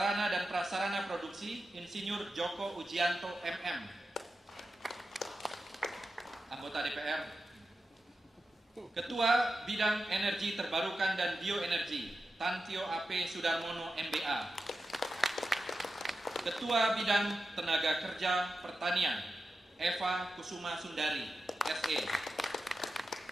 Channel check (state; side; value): normal; both; correlation 0.91